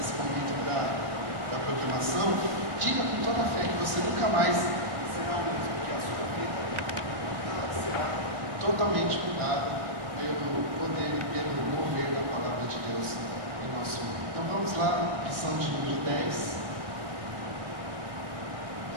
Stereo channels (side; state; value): left; late; 1.6 ms